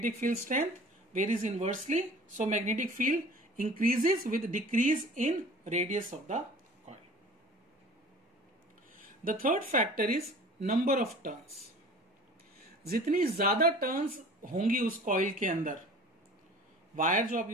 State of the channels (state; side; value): normal; both; correlation 0.44